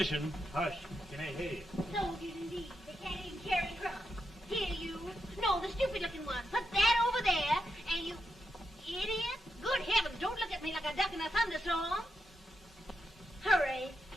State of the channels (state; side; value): normal; both; correlation 0.85